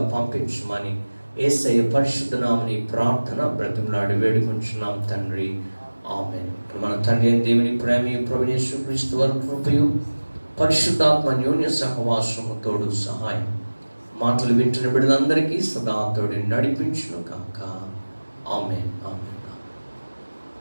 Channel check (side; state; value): both; inverted; correlation -1.00